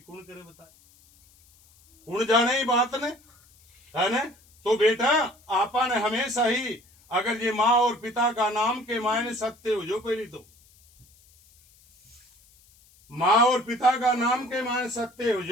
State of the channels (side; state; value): left; noise; hiss, 30 dB below the sound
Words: करे बताए कौन जाने ही बात ने है ना। तो बेटा आपा ने हमेशा ही अगर ये माँ और पिता का नाम के मायने सत्य हो जो पहली तो माँ और पिता का नाम के मायने सत्य हो